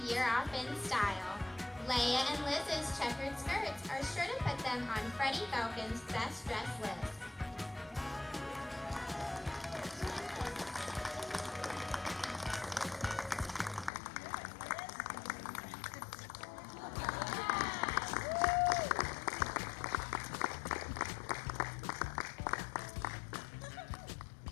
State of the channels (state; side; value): drops out; right; at 13.9 s